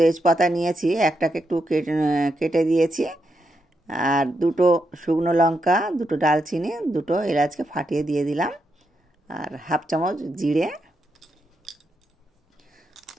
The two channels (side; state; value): both; normal; correlation 0.83